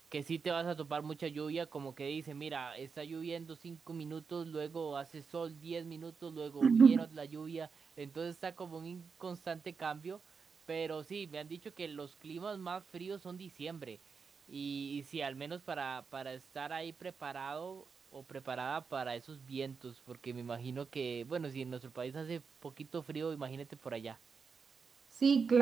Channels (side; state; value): left; quieter; 5.5 dB